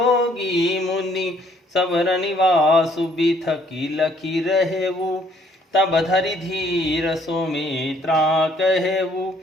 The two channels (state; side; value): normal; both; correlation 0.63